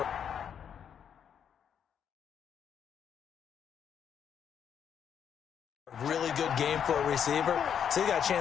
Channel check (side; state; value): right; quieter; 8.2 dB